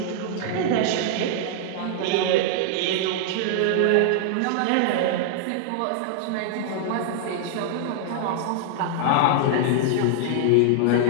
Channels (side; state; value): both; different; correlation -0.01